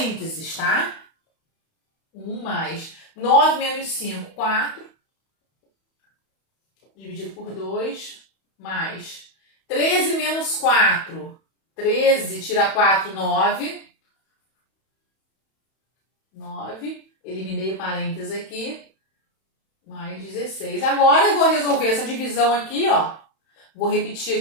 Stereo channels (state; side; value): late; right; 31 ms